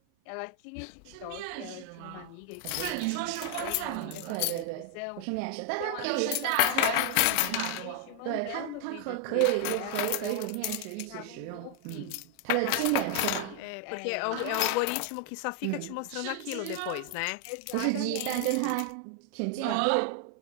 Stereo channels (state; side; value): different; both; correlation 0.00